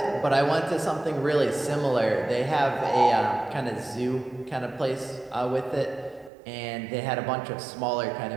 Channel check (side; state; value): left; drops out; at 6.3 s